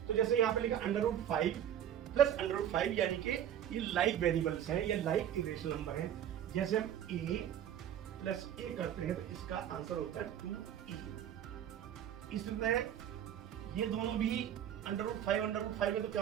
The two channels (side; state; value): left; quieter; 10.2 dB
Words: तो जैसे यहाँ पे लिखा √5 प्लस √5 यानी कि ये लाइक वेरिएबल्स हैं, ये लाइक इरेशनल नंबर है। जैसे हम a प्लस a करते हैं तो इसका आंसर होता है 2e। इस तरह ये दोनों भी √5 में तो क्या